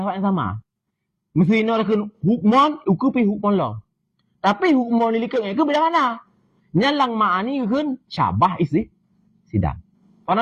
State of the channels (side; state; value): both; identical; correlation 1.00